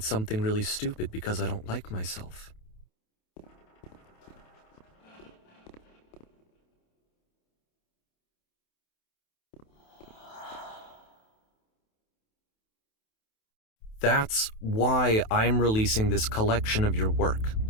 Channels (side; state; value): right; late; 28 ms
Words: something really stupid because I don't like myself. That's why I'm releasing this collection of your work,